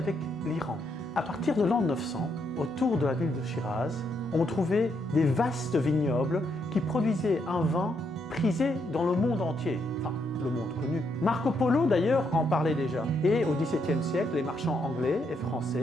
l'Iran. À partir de l'an 900, autour de la ville de Shiraz, on trouvait des vastes vignobles qui produisaient un vin prisé dans le monde entier, enfin le monde connu. Marco Polo d'ailleurs en parlait déjà. Et au XVIIe siècle, les marchands anglais et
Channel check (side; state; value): both; normal; correlation 0.77